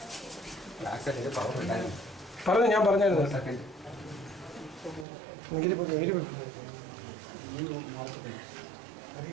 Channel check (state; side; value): drops out; left; at 5.1 s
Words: പറഞ്ഞു, ഞാൻ പറഞ്ഞായിരുന്നു. ഗിരി പോയി